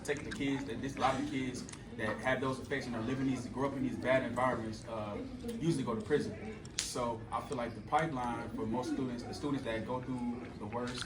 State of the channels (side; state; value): both; identical; correlation 1.00